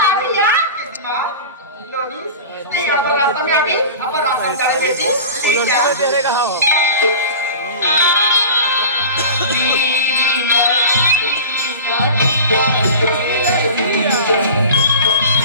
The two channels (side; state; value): both; inverted; correlation -0.35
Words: है यार मां लोनी नहीं अपन रास्ता में अभी अपन रास्ता में चले बेटी तेरे कहा हो